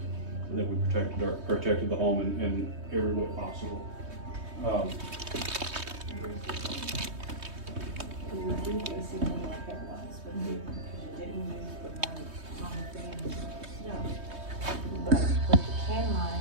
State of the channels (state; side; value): late; left; 3.2 ms